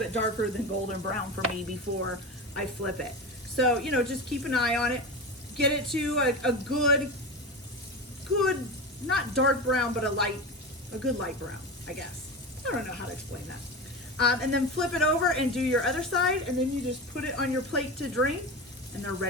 darker than golden brown for me before I flip it. So, you know, just keep an eye on it. Get it to a good, not dark brown, but a good light brown, I guess. I don't know how to explain that. And then flip it over and do your other side, and then you just put it on your plate to drain, and they're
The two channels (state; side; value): normal; both; correlation 0.25